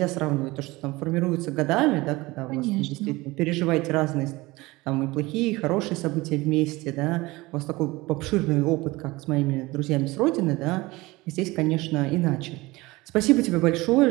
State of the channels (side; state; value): left; quieter; 21.2 dB